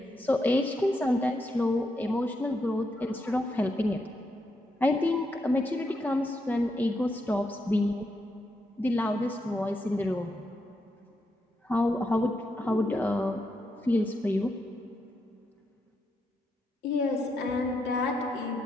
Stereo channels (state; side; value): normal; both; correlation 0.82